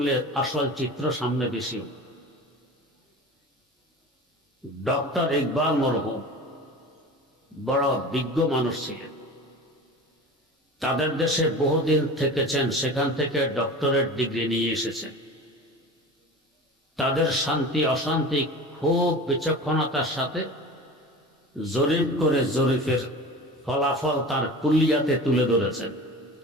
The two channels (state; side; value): normal; both; correlation 0.35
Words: আসল চিত্র সামনে বেশি। ডক্টর ইকবাল মরহুম বড় বিজ্ঞ মানুষ ছিলেন। তাদের দেশে বহুদিন থেকেছেন, সেখান থেকে ডক্টরেট ডিগ্রি নিয়ে এসেছেন। তাদের শান্তি অশান্তি খুব বিচক্ষণতার সাথে জরিপ করে জরিপের ফলাফল তার কুল্লিয়াতে তুলে ধরেছেন।